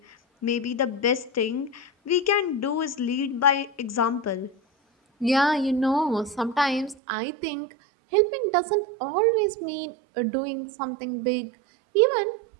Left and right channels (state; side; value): drops out; left; at 7.0 s